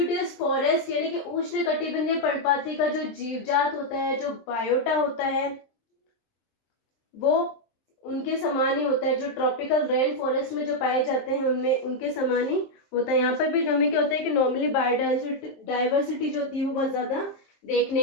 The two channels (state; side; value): late; right; 23 ms